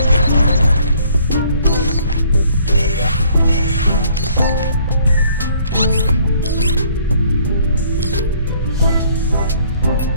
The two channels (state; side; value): inverted; both; correlation -0.60